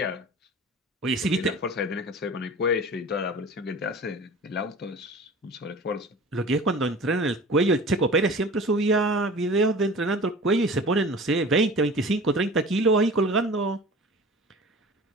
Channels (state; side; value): normal; both; correlation 0.40